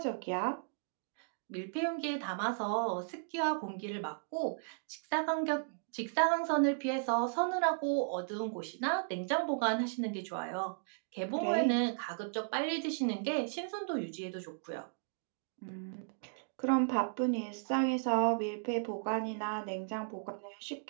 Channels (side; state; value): left; silent; digital silence